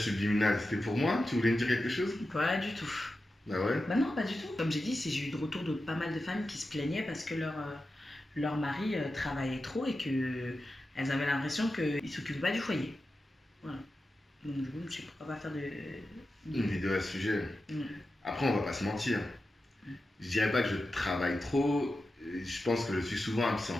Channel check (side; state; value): both; normal; correlation 0.92